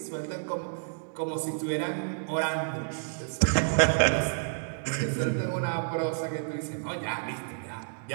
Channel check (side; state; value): left; silent; digital silence